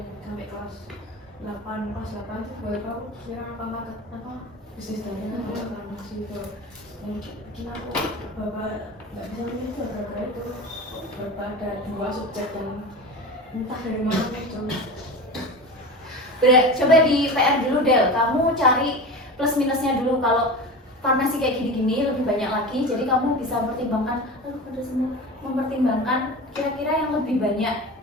sampai kelas 8 tuh baru tahu kira apa bisnis dari farmasi itu yang bikin aku bapak nggak bisa milih itu gara-gara itu ada dua masuk chat dan entah dari mana muncul. Coba di PR dulu Del, kamu cari plus minusnya dulu. Kalau farmasi kayak gini-gini lebih banyak lagi, jadi kamu bisa mempertimbangkan, mempertimbangkan kira-kira yang lebih banyak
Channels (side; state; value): both; normal; correlation 0.29